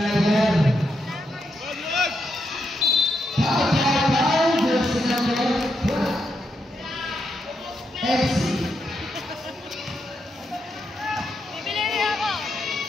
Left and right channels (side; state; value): both; normal; correlation 0.82